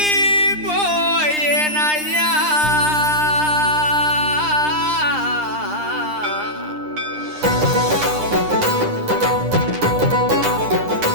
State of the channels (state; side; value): late; left; 9.9 ms